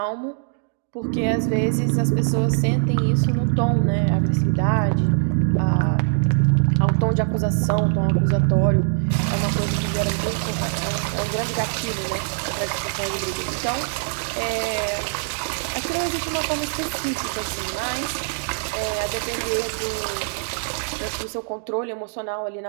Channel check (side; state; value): left; silent; digital silence